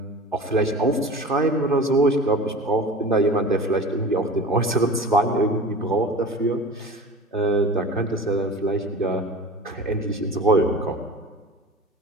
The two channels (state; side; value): normal; both; correlation 0.37